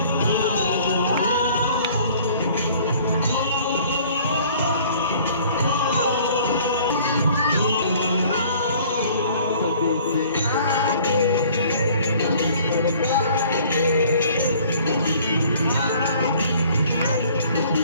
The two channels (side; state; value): both; inverted; correlation -0.53